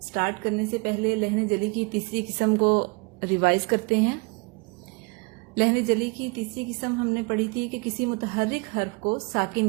سٹارٹ کرنے سے پہلے لہن جلی کی تیسری قسم کو ریوائز کرتے ہیں. لہن جلی کی تیسری قسم ہم نے پڑھی تھی کہ کسی متحرک حرف کو ساکن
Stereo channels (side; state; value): left; quieter; 29.8 dB